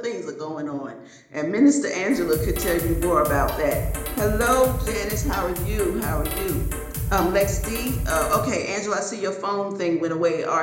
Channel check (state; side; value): identical; both; correlation 1.00